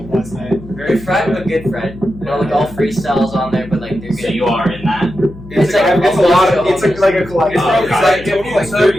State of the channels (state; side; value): noise; left; hum, 17 dB below the sound